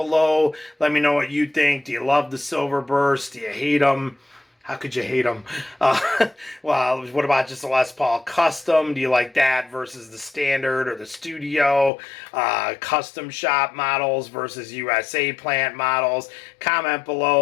Let me know what you think. Do you love the Silverburst? Do you hate them? How could you hate them? Well, what about just a Les Paul Custom? Do you like that versus the standard or the studio? Custom shop models versus USA plant models? Comment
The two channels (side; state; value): right; drops out; at 11.9 s